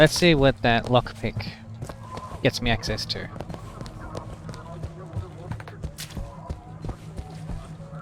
see what that lockpick gets me access to.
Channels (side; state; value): both; identical; correlation 1.00